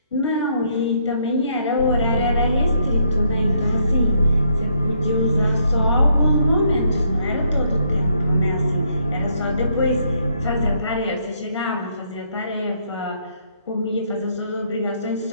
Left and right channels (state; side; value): inverted; both; correlation -0.72